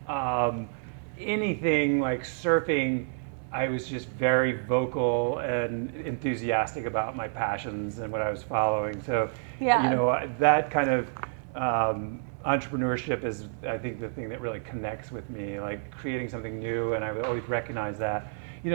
anything like surfing, I was just very vocal and enthusiastic about my passions and what I was following. So, that kind of entrepreneurship is, I think, the thing that really connects with me, like creating something new, and I would always recognize that.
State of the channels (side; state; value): left; silent; 59 dB below the other